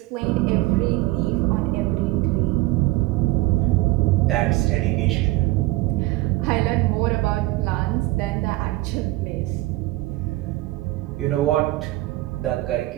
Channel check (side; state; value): left; quieter; 19.0 dB